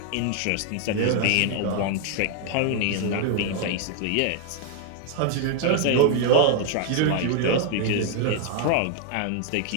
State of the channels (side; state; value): both; different; correlation 0.00